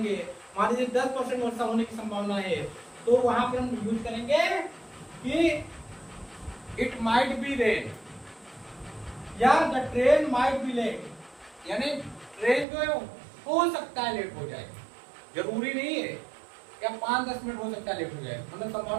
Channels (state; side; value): drops out; left; at 12.7 s